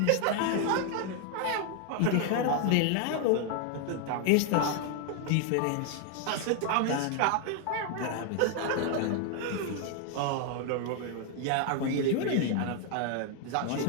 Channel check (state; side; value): different; both; correlation 0.00